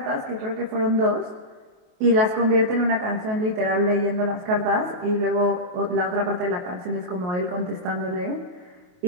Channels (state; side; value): late; left; 28 ms